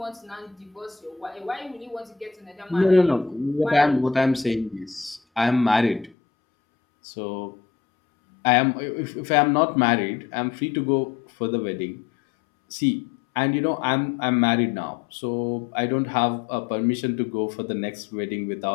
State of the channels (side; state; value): right; drops out; at 6.2 s